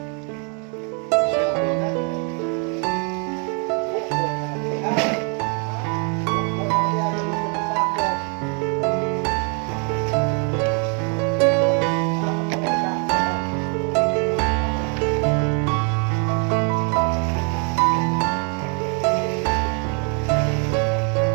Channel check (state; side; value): quieter; left; 37.4 dB